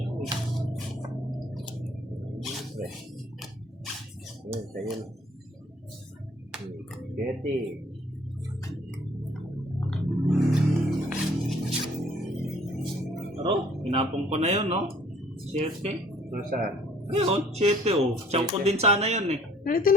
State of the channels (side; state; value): both; normal; correlation 0.57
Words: Yun, sa'yo na. 7. Pero, pinapong ko na yun, no? 7. Nasaan? Ayun, 7 oh. Tiyan ko din sana yun eh. Ano